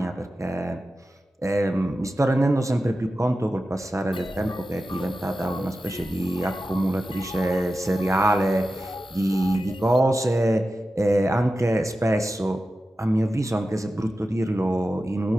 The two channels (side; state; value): both; normal; correlation 0.93